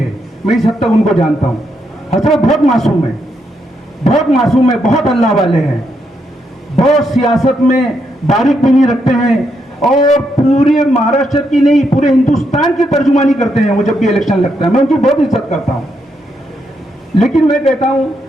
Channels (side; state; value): both; normal; correlation 0.79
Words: मैं इस हद तक उनको जानता हूं। हजरत बहुत मासूम है, बहुत मासूम है, बहुत अल्लाह वाले हैं, बहुत सियासत में बारीक बीनी रखते हैं और पूरे महाराष्ट्र की नहीं पूरे हिंदुस्तान की तर्जुमानी करते हैं वो जब भी इलेक्शन लगता है। मैं उनकी बहुत इज्जत करता हूं, लेकिन मैं कहता हूं